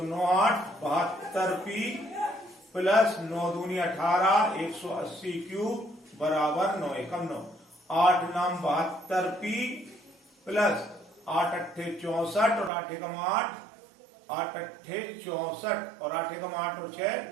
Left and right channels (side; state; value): left; drops out; at 12.7 s